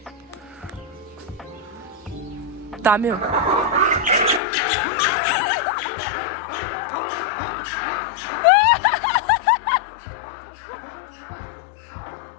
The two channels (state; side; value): drops out; right; at 4.4 s